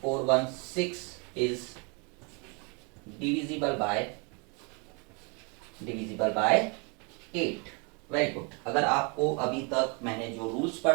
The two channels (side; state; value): left; quieter; 32.9 dB